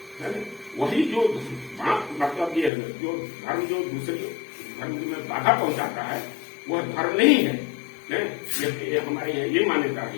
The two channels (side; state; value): right; drops out; at 2.7 s